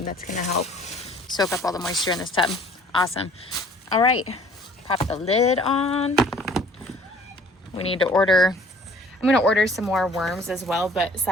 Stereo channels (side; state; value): both; normal; correlation 0.53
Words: That's going to help soak up all the moisture in this tub. Awesome. All right. Pop the lid on. We need to order. I'm gonna order some more worms as well, but